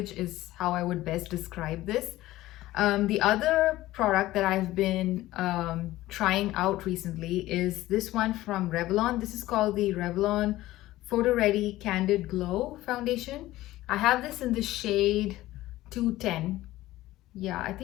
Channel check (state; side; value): quieter; right; 16.4 dB